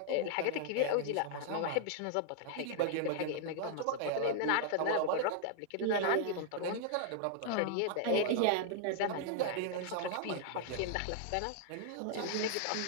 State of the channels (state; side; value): different; both; correlation -0.01